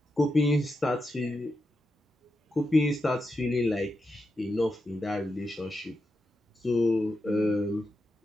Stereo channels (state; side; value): normal; both; correlation 0.88